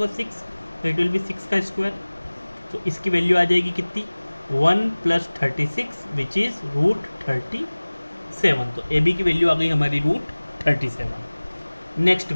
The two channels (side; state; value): both; inverted; correlation -1.00